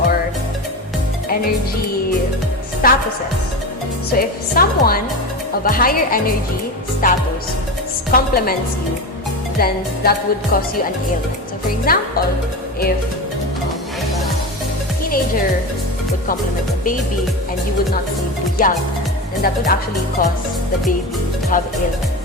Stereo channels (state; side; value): normal; both; correlation 0.23